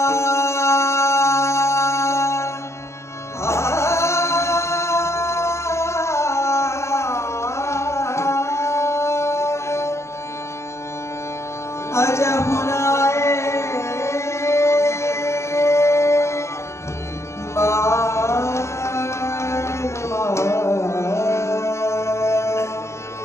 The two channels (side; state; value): right; late; 0.13 ms